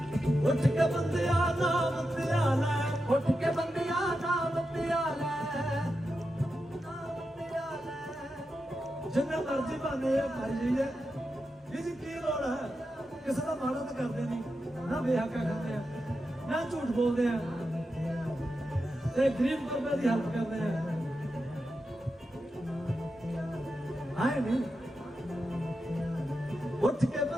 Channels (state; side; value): normal; both; correlation 0.89